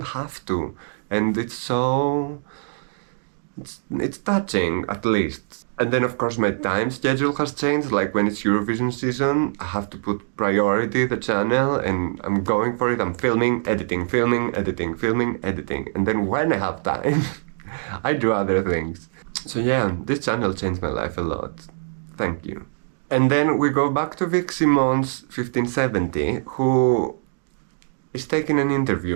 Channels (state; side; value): silent; left; digital silence